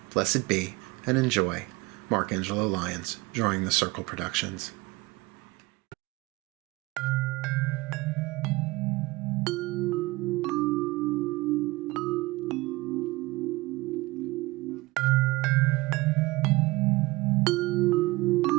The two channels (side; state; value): left; quieter; 21.6 dB